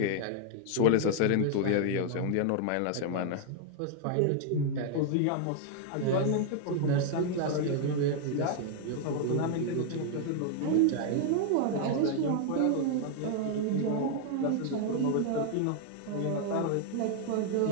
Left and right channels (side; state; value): both; different; correlation 0.00